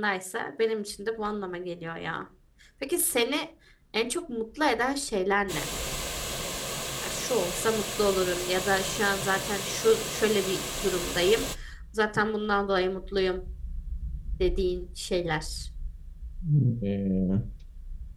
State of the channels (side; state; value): both; identical; correlation 1.00